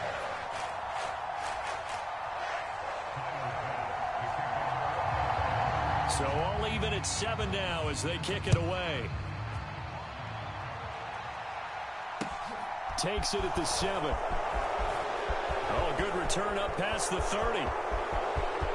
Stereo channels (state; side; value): identical; both; correlation 1.00